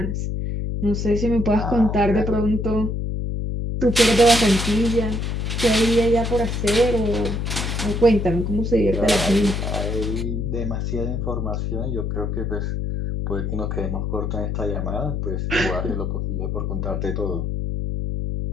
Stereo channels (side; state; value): left; noise; hum, 2 dB below the sound